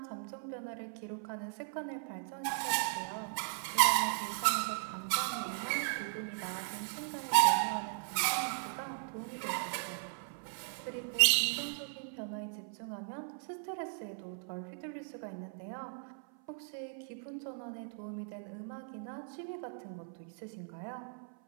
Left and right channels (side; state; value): left; silent; 53 dB below the other